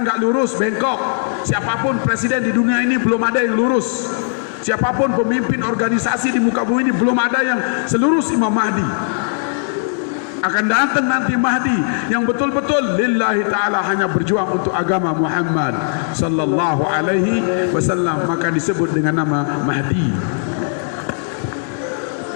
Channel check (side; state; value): right; silent; 62 dB below the other